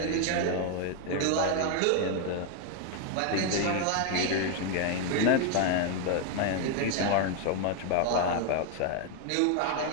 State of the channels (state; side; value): different; both; correlation 0.01